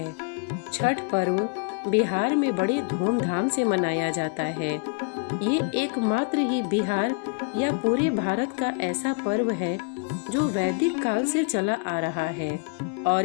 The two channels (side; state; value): right; quieter; 38.6 dB